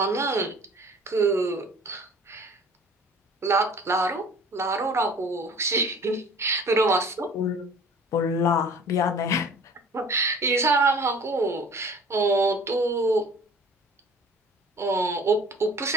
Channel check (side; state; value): both; normal; correlation 0.47